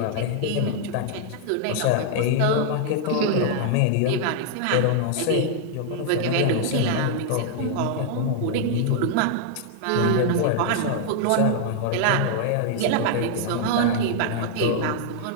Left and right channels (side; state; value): both; different; correlation 0.00